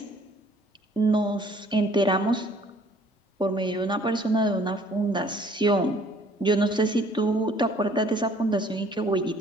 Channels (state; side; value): normal; both; correlation 0.58